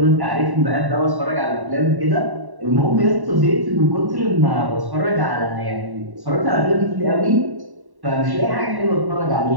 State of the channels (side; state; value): left; late; 1.1 ms